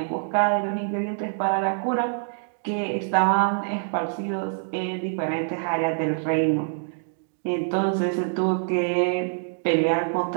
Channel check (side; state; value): left; silent; digital silence